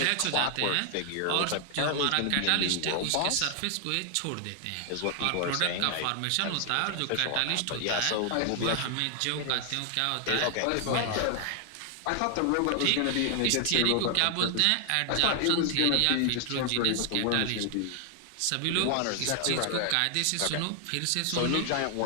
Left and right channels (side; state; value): both; different; correlation 0.00